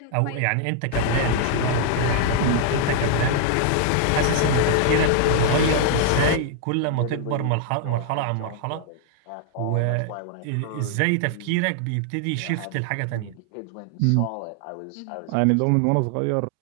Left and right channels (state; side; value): different; both; correlation 0.00